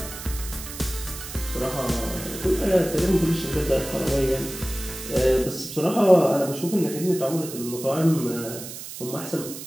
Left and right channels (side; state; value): right; noise; hiss, 11 dB below the sound